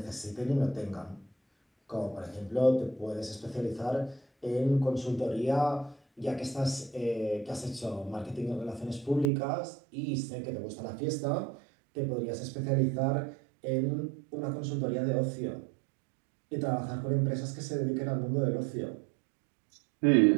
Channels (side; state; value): left; drops out; at 9.3 s